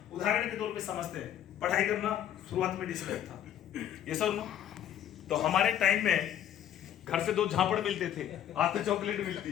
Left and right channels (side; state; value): right; quieter; 10.6 dB